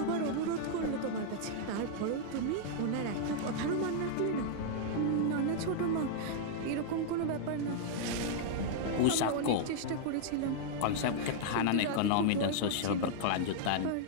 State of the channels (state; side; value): different; both; correlation -0.01